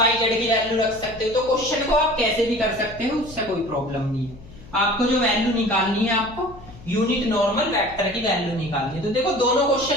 जेड की वैल्यू रख सकते हो। तो क्वेश्चन को आप कैसे भी कर सकते हो, उससे कोई प्रॉब्लम नहीं है। आपको जो वैल्यू निकालनी है, आपको यूनिट नॉर्मल वेक्टर की वैल्यू निकालनी है। तो देखो दोनों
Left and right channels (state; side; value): noise; left; hum, 19 dB below the sound